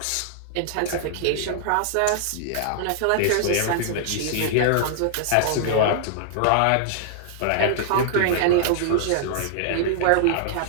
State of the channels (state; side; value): different; both; correlation -0.01